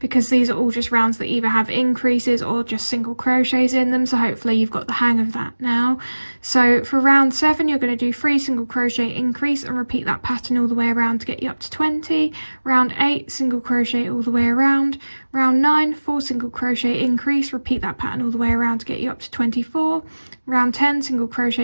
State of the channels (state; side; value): inverted; both; correlation -1.00